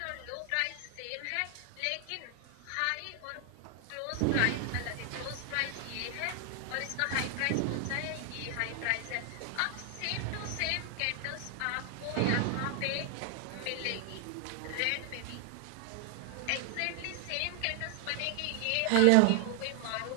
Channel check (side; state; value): both; different; correlation 0.00